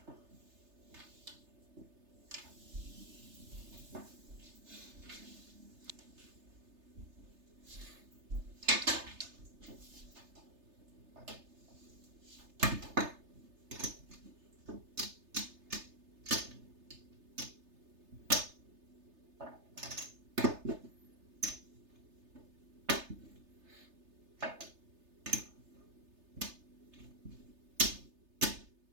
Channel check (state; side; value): late; left; 3.3 ms